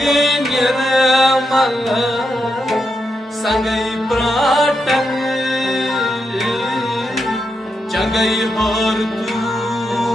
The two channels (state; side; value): normal; both; correlation 0.84